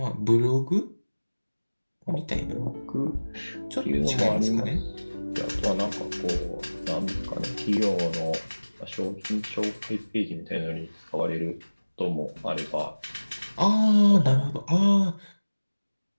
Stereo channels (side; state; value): both; inverted; correlation -1.00